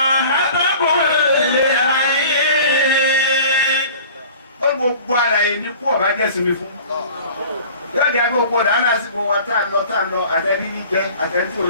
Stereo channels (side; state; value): both; inverted; correlation -0.44